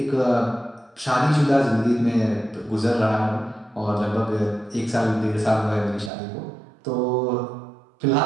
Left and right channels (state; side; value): drops out; left; at 6.1 s